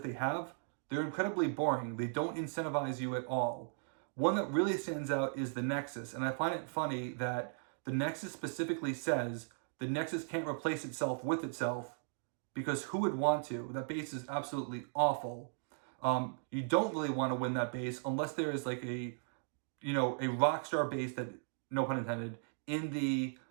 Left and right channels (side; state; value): left; silent; digital silence